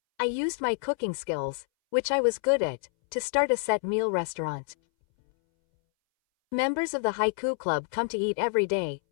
I used my cooking skills, which I was good at, to start a set meal restaurant. Members of the Haiku Club come to eat every day,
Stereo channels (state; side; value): silent; right; 59 dB below the other